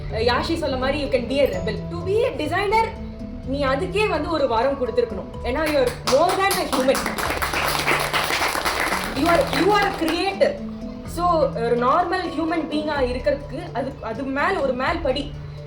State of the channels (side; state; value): both; identical; correlation 1.00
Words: யாஷி சொல்ல மாதிரி you can be a rebel. To be a designer நீ அதுக்கே ஒரு வாரம் கொடுத்துருக்கணும். ஏன்னா you are more than a human. You are creator. So ஒரு நார்மல் ஹியூமன் பீயிங்காக இருக்கிறதுக்கு அது ஒரு மேல் படி.